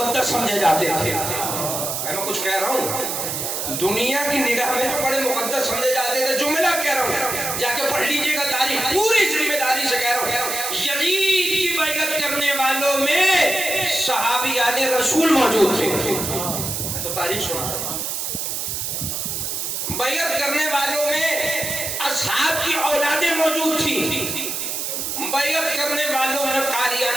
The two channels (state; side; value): noise; right; hiss, 3 dB below the sound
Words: سمجھے جاتے تھے، میں کچھ کہہ رہا ہوں، دنیا کی نگاہ میں جو بڑے مقدس سمجھے جاتے تھے، جملہ کہہ رہا ہوں، جا کے پڑھ لیجئے گا تاریخ، پوری ذمہ داری سے کہہ رہا ہوں، یزید کی بیعت کرنے والوں میں صحابیان رسول موجود تھے، میں تو تاریخ سنا رہا ہوں، بیعت کرنے والوں میں اصحاب کی اولادیں موجود تھیں، بیعت کرنے والوں میں